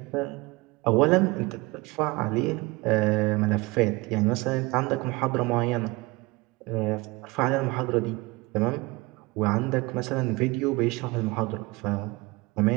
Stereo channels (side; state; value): left; quieter; 23.4 dB